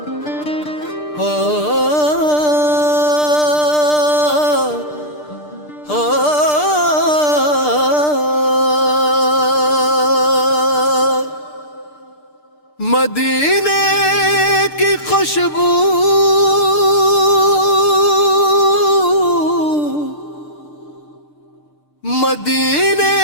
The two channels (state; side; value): late; right; 6.7 ms